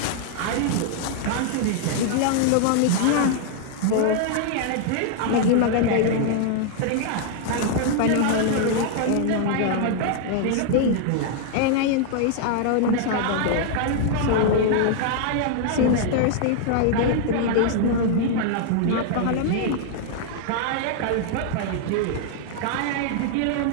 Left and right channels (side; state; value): both; different; correlation 0.00